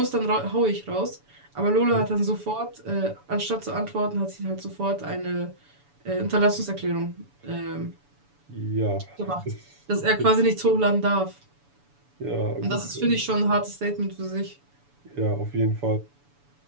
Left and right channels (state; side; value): late; left; 7.0 ms